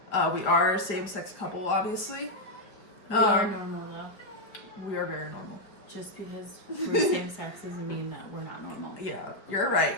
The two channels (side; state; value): right; late; 4.8 ms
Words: We are a same-sex couple, obviously. We are normal, though. We are very normal. Just because we're same sex doesn't mean that we're not normal. Yeah, you're